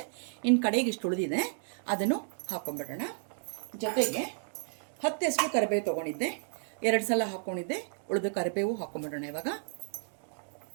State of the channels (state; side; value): silent; left; digital silence